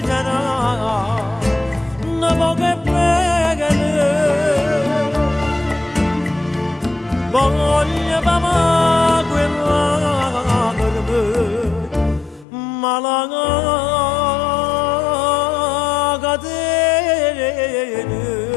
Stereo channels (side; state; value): right; drops out; at 12.5 s